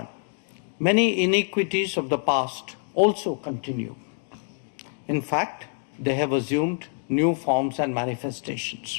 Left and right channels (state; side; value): silent; right; 57 dB below the other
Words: many inequities of the past also continue. In fact, they have assumed new forms and